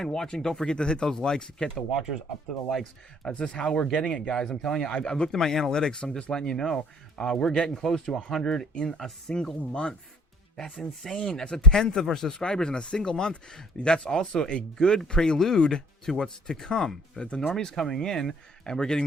watching. Don't forget to hit those likes. Get the watchers up to the likes. That's just how we're getting it, guys. I'm telling you, I've looked at my analytics. I'm just letting you know. We're getting close to 100 in a single month. That's insane. That's a 1/10 of our subscribers in a single month. That's also a good prelude to what's to come. The normies coming in, and we're getting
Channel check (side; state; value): both; normal; correlation 0.56